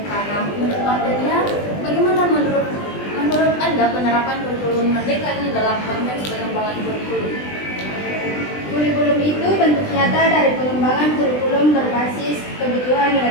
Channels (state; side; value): late; right; 20 ms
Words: Nah, menurut Wahdania, bagaimana menurut Anda penerapan kurikulum merdeka ini dalam konteks pengembangan kurikulum? Kurikulum itu bentuk nyata dari pengembangan kurikulum berbasis kebutuhan